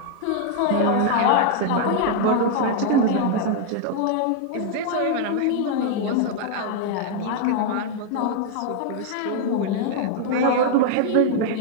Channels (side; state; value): both; different; correlation 0.00